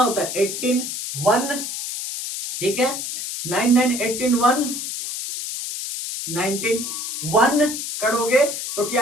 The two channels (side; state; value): left; noise; hiss, 5 dB below the sound